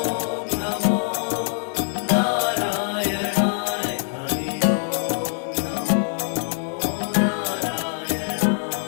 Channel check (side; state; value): right; silent; digital silence